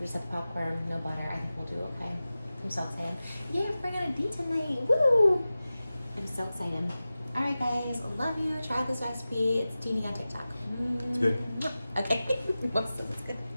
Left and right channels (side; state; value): both; inverted; correlation -0.95